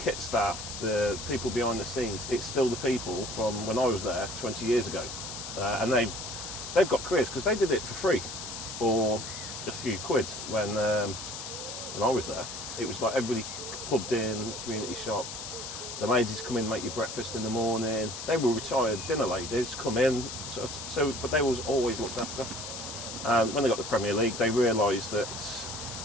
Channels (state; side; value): noise; left; hiss, 8 dB below the sound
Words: staff, the people behind the scenes, it's still the people from when I was there 20 years ago. And they've got careers because they did it for free or a few quid when I was there. It was like everybody clubbed in, community shop. The ladies come in, make you breakfast in the morning. They were retired dinner ladies, come in, but they was always looked after. And when they got the Premier League, they realised that